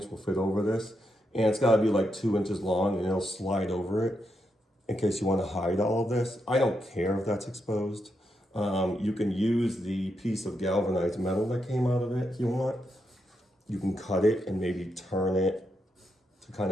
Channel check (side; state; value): both; normal; correlation 0.83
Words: will fit over this. And it's gotta be like 2 inches long and it'll slide over it in case you wanna hide all of this. I don't care if that's exposed. You can use the piece of galvanized metal that came out of it if you want. You can cut it and maybe turn it to kind